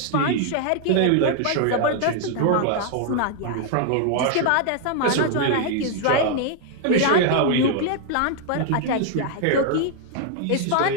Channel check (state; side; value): different; both; correlation 0.00